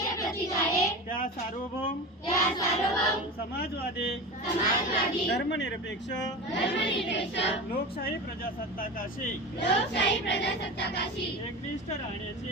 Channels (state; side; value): normal; both; correlation 0.28